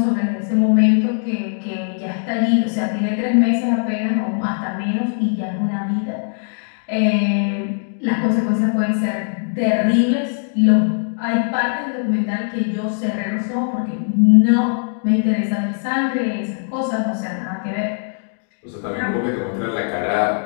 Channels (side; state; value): right; silent; digital silence